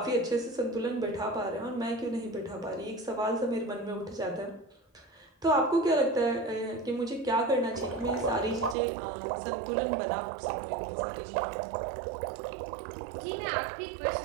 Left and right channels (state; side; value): drops out; left; at 8.8 s